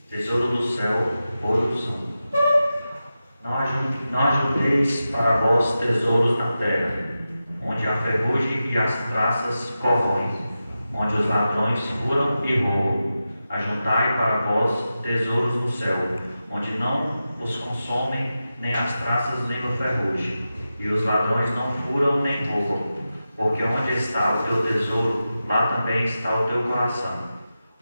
Tesouro do céu, ouro usam. Não ajunteis para vós tesouros na terra, onde a ferrugem e as traças corroem, onde os ladrões furam e roubam. Ajuntai para vós tesouros no céu, onde não os consomem nem as traças nem a ferrugem, e os ladrões não furam nem roubam. Porque onde está o teu tesouro, lá também está o teu coração.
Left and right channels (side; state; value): both; inverted; correlation -0.92